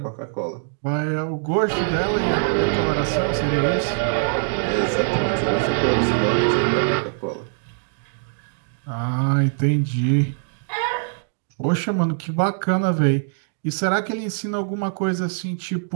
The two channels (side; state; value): left; silent; digital silence